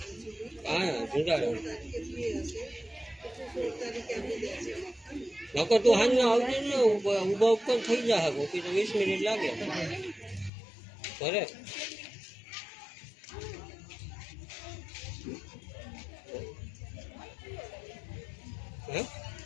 હા જુગાડો નકર તું હાલ ના આવજે ને, ઉભા ઉપર થઈ જાય કોકી તો 20 મિનિટ લાગે ઘરે. હે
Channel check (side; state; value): right; drops out; at 10.5 s